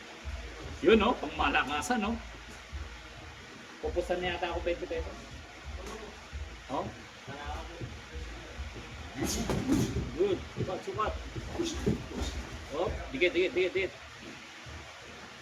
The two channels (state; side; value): identical; both; correlation 1.00